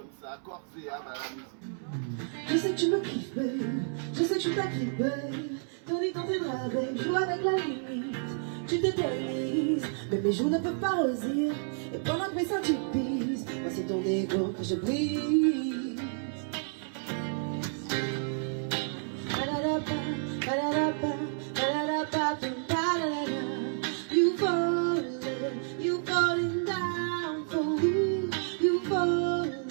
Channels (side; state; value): left; silent; 58 dB below the other